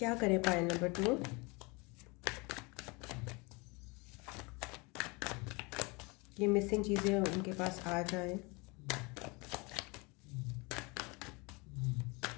करें पाइल नंबर 2? ये मिसिंग चीज़ें उनके पास आ जाएं।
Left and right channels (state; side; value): quieter; right; 27.7 dB